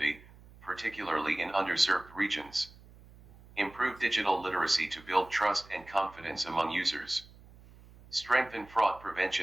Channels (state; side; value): noise; right; hum, 22 dB below the sound